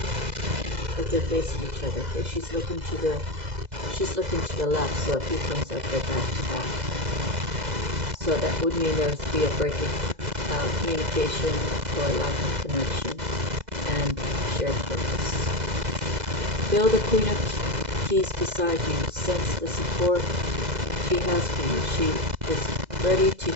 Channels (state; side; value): late; left; 2.0 ms